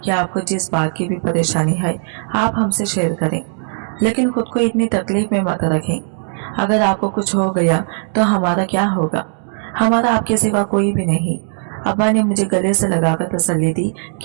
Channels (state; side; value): silent; left; digital silence